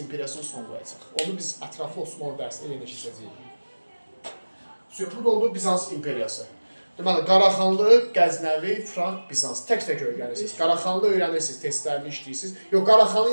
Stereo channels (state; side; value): inverted; both; correlation -1.00